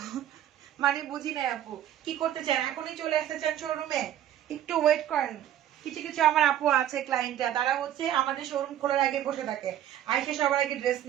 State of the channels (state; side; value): quieter; left; 11.4 dB